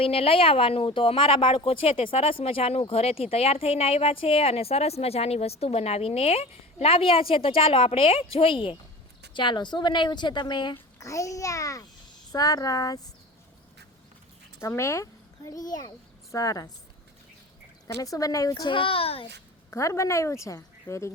લઈ આવવાનું। તો અમારા બાળકો છે તે સરસ મજાનું ઘરેથી તૈયાર થઈને આવ્યા છે અને સરસ મજાની વસ્તુ બનાવીને લાવ્યા છે। તો ચાલો આપણે જોઈએ। ચાલો શું બનાવ્યું છે તમે? ઘડિયાળ। સરસ। તમે? ઘડિયાળ। સરસ। તમે શું બનાવ્યું છે? ઘર બનાવ્યું છે। Very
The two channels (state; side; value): normal; both; correlation 0.36